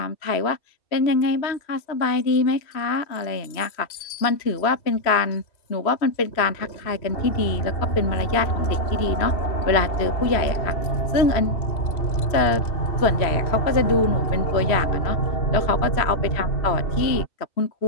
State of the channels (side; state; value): right; late; 3.0 ms